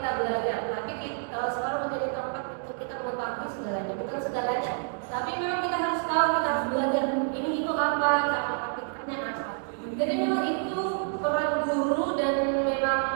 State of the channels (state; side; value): silent; left; 59 dB below the other